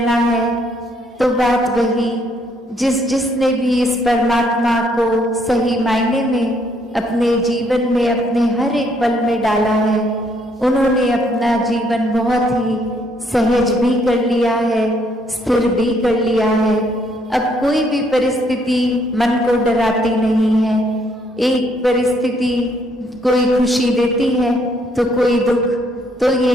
है। तो बात वही, जिसने भी इस परमात्मा को सही मायने में अपने जीवन में, अपने हर एक पल में डाला है, उन्होंने अपना जीवन बहुत ही सहज भी कर लिया है, स्थिर भी कर लिया है। अब कोई भी परिस्थिति मन को डराती नहीं है। एक परिस्थिति कोई खुशी देती है तो कोई दुख, तो ये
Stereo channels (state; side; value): normal; both; correlation 0.69